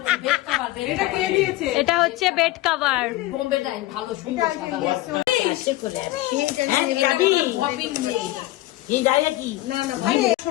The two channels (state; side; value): quieter; right; 17.4 dB